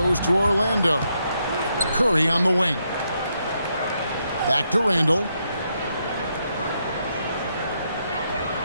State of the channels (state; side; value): inverted; both; correlation -0.79